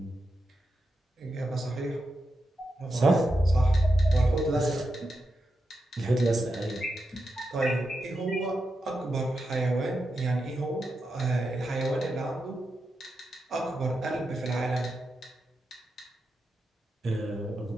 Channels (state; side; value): normal; both; correlation 0.88